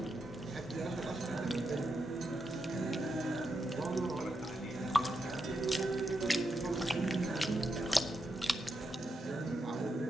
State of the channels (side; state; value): both; normal; correlation 0.84